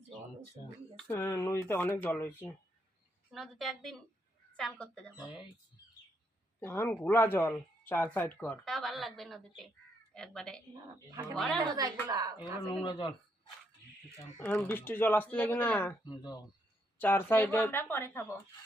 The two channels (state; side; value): normal; both; correlation 0.76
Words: নদীতে অনেক জল হয়েছে। নদীতে একদিন চান করতে যাবো, এখন ঘোলা জল, 4 সাইড কর। তাও ভালো লাগবে নদীতে। একবারে এগুলো নোংরা জল। এখন বৃষ্টির জল আসতে লাগে না, 4 সাইডে আমরা পরে খাবো।